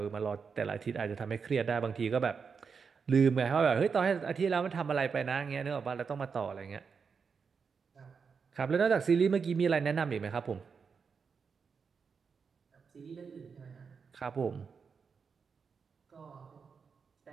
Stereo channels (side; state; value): left; quieter; 5.7 dB